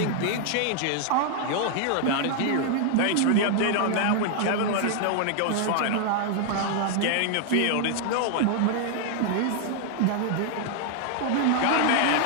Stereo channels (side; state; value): both; different; correlation 0.00